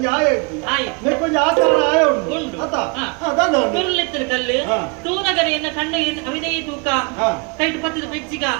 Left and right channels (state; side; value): quieter; left; 31.2 dB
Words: ಆಯ ಇತ್ತು ಕೊಂಚ ಆಕಾರ ಆಯ ಉಂಟು ಕುರುಳಿತ್ತಿನ ಕಲ್ಲು ತೂನಗರಿಯನ್ನ ಕಂಡ ಅವಿದೈ ತೂಕ ಕೈಟ್ ಪತ್ತದ ಬೆಜ್ಜಿಗ